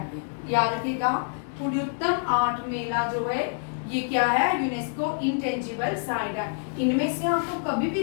याद रखिएगा। कुडियट्टम आर्ट मेला जो है ये क्या है? यूनेस्को इंटेंजिबल साइट है। इनमें से आपको कभी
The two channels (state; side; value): silent; right; digital silence